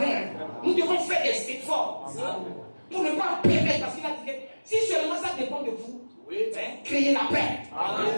Nous devons faire des efforts pour ne pas permettre, parce qu'il a dit que si seulement ça dépend de vous, créez la paix.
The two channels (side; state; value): both; inverted; correlation -1.00